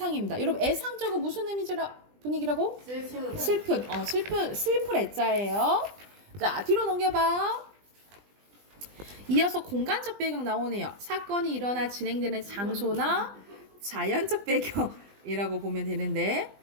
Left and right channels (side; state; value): left; late; 20 ms